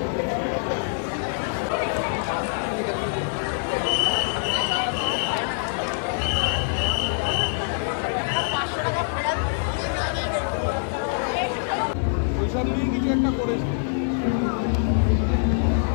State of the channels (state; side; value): silent; right; 62 dB below the other